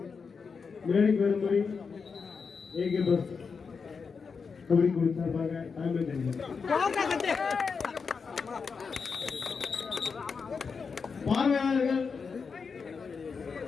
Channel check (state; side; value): quieter; right; 5.4 dB